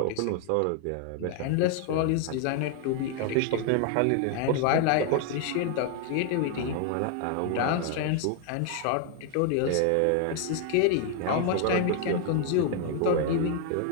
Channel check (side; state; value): both; different; correlation 0.00